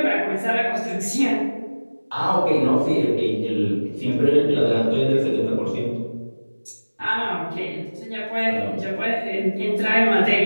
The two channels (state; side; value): inverted; both; correlation -1.00